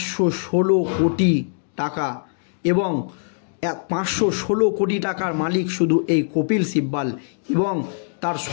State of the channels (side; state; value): right; silent; digital silence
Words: কোটি টাকা এবং 516 কোটি টাকার মালিক শুধু এই কপিল সিব্বল, এবং তার